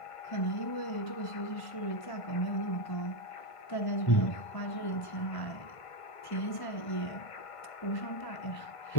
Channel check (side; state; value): right; late; 1.5 ms